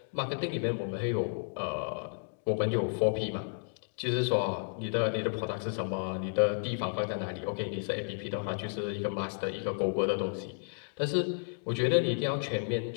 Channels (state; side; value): silent; right; digital silence